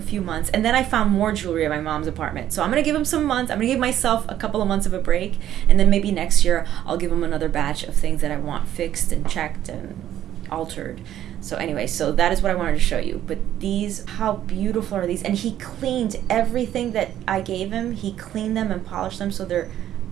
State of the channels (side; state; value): left; quieter; 11.6 dB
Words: few months. And then I found more jewelry at my mom's apartment. So I'm going to give him some months. I'm going to give myself a couple of months of a break. And then maybe next year I'll give him another batch of things that I want fixed and checked and altered. So anyway, so that is what I wanted to show you. But these, how beautiful are these? And he cleaned everything that I gave him. He cleaned them and polished them so they're